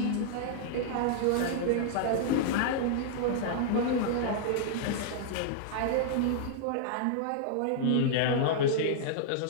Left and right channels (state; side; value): different; both; correlation -0.01